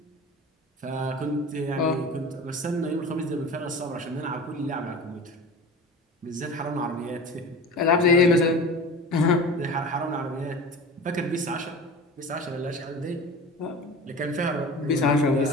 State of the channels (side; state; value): both; normal; correlation 0.35